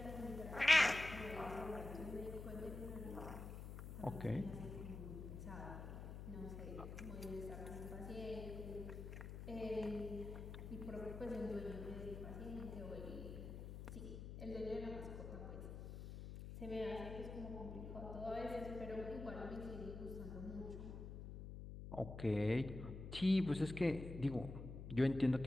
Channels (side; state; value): left; noise; hum, 8 dB below the sound